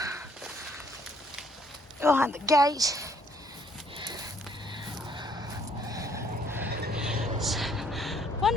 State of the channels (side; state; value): both; normal; correlation 0.64